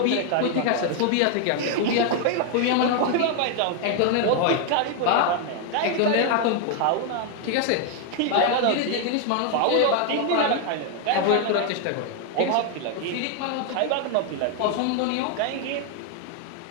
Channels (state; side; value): different; both; correlation 0.01